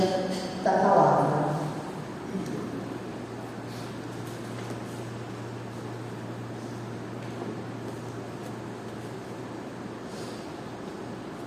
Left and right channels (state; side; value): identical; both; correlation 1.00